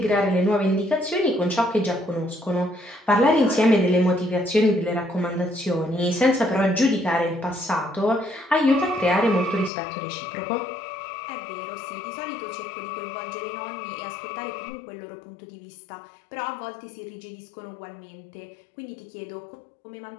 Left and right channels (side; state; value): right; drops out; at 9.7 s